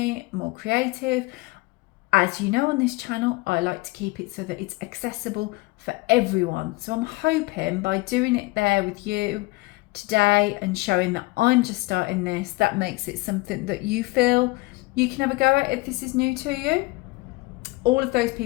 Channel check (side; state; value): right; quieter; 22.6 dB